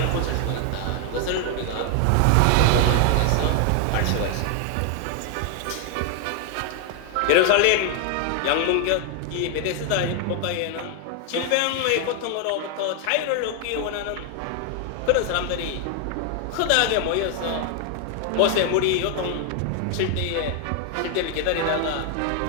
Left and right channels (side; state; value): both; different; correlation 0.00